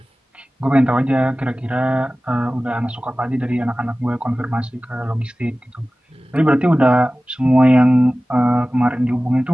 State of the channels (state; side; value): normal; both; correlation 0.97